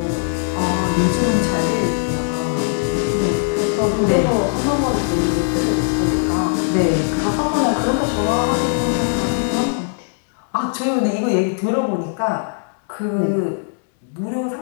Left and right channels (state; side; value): silent; right; digital silence